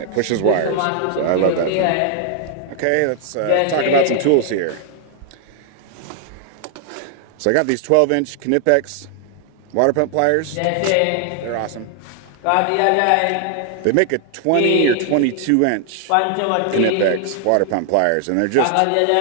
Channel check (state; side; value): different; both; correlation 0.00